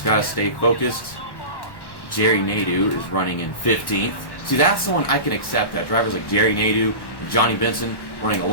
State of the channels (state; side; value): late; right; 1.1 ms